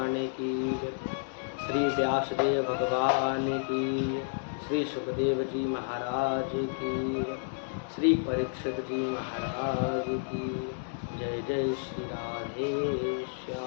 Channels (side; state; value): right; silent; digital silence